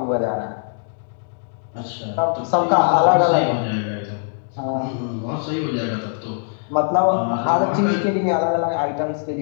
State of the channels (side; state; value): right; silent; 65 dB below the other